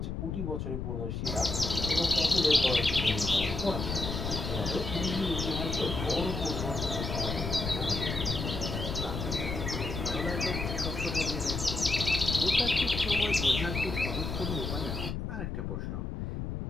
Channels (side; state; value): left; noise; rumble, 4 dB below the sound